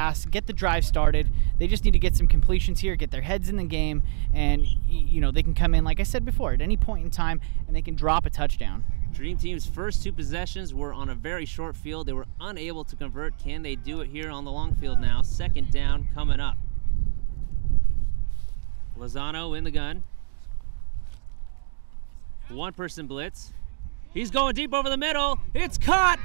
get the drive started. They just need to get some completions here, get their heads in the game, and you know they can come in, like I said before, at any point in time, and they can drop a touchdown. Dream Team's first 2 possessions were on a very short field. They were unable to convert. Can they do it here on the long field now? 2nd down coming up. Lozano in the gun. 1-person blitz. He's going deep over the middle. It's caught.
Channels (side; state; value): left; silent; 62 dB below the other